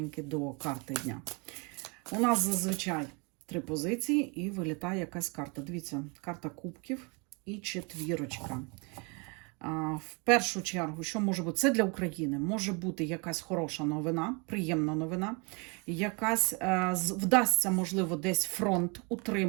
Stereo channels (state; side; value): quieter; left; 30.6 dB